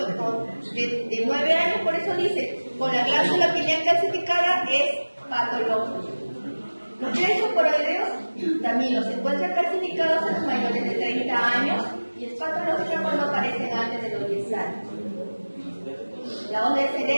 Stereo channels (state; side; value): inverted; both; correlation -1.00